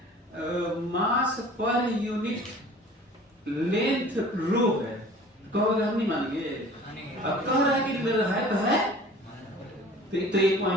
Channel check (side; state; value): both; normal; correlation 0.46